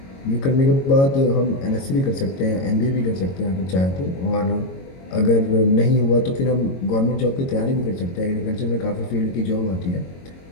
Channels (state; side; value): late; right; 22 ms